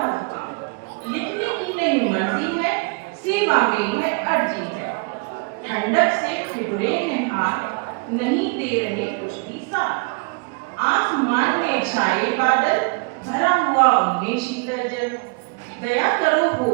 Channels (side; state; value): left; quieter; 33.0 dB